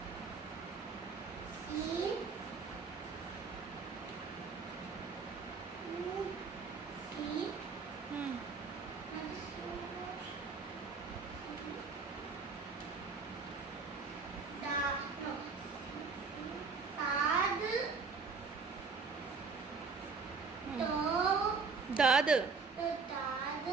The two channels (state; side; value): quieter; left; 4.9 dB